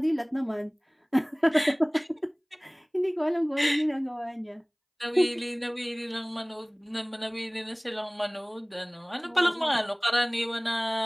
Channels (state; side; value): identical; both; correlation 1.00